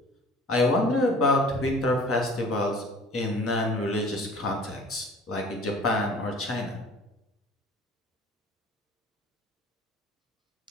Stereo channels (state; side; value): normal; both; correlation 0.48